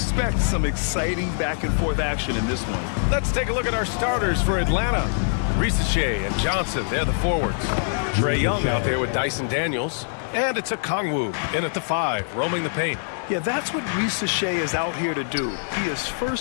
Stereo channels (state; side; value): silent; right; digital silence